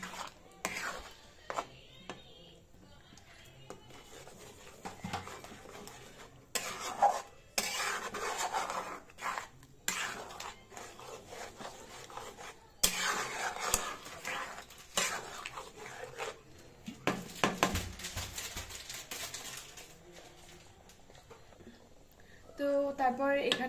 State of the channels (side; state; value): both; identical; correlation 1.00